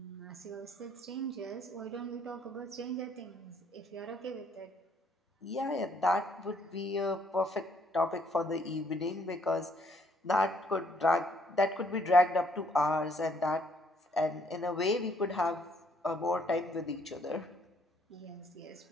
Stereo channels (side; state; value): both; normal; correlation 0.67